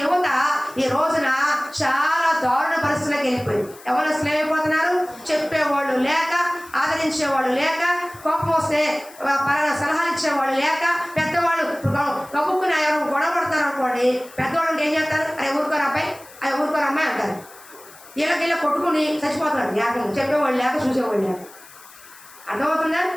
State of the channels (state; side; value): noise; left; hiss, 21 dB below the sound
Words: యువత ఈ రోజున చాలా దారుణ పరిస్థితులకు వెళ్ళిపోయింది. ఎవరు అసలు ఏమైపోతున్నారు? చెప్పేవాళ్ళు లేక, ఆదరించేవాళ్ళు లేక, కోపం వస్తే సలహాలు ఇచ్చేవాళ్ళు లేక, పెద్దవాళ్ళు కబుక్కుని ఎవరు గొడవ పడతారు అనుకోండి, పెద్దవాళ్ళు ఏం చేస్తారు? అరే ఊరుకోరు అబ్బాయి, అరే ఊరుకోరు అమ్మాయి అంటారు. వీళ్ళకి కొట్టుకుని చచ్చిపోతున్నారు. లేక చెప్పేవాళ్ళు లేక, చూసేవాళ్ళు లేక. అర్థమవుతుందా?